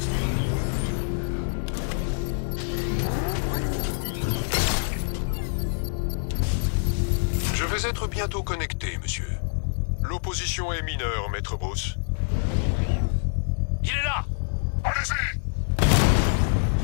Je vais être bientôt connecté, monsieur. L'opposition est mineure, maître Bruce. Il est là! Allez-y!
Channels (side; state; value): right; silent; digital silence